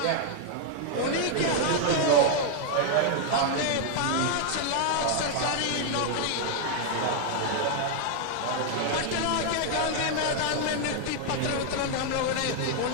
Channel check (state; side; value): different; both; correlation 0.00